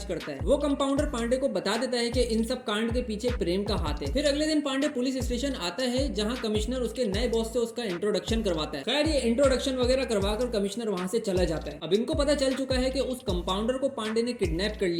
करता है। वो कंपाउंडर पांडे को बता देता है कि इन सब कांड के पीछे प्रेम का हाथ है। फिर अगले दिन पांडे पुलिस स्टेशन आता है जहां कमिश्नर उसके नए बॉस से उसका इंट्रोडक्शन करवाता है। खैर ये इंट्रोडक्शन वगैरह करवाकर कमिश्नर वहां से चला जाता है। अब इनको पता चल चुका है कि उस कंपाउंडर को पांडे ने किडनैप कर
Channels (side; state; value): both; identical; correlation 1.00